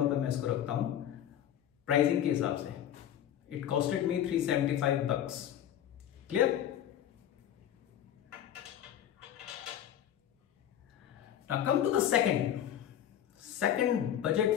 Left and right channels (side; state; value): right; quieter; 10.6 dB